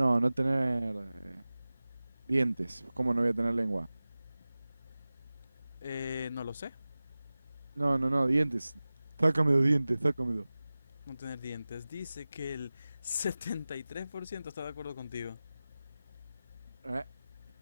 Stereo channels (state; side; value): inverted; both; correlation -0.97